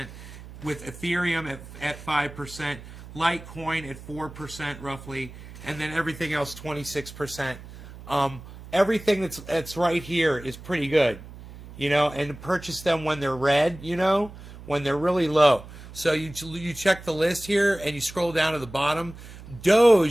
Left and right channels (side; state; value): right; noise; hum, 16 dB below the sound